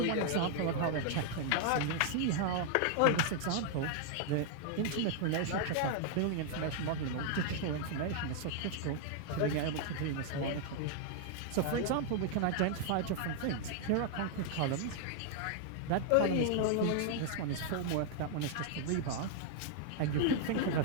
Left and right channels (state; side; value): different; both; correlation 0.00